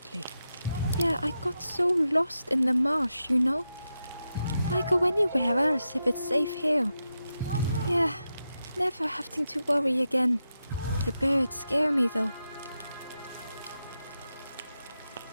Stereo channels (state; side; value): inverted; both; correlation -0.88